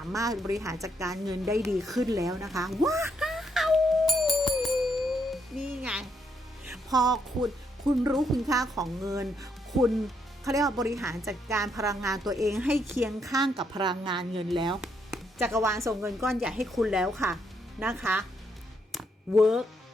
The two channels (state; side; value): normal; both; correlation 0.75